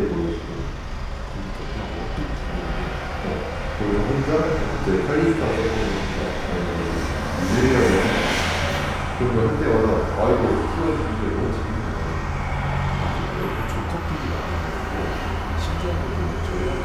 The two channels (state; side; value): identical; both; correlation 1.00